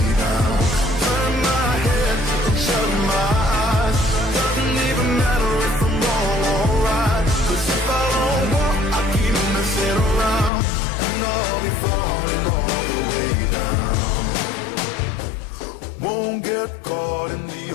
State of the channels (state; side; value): drops out; right; at 10.5 s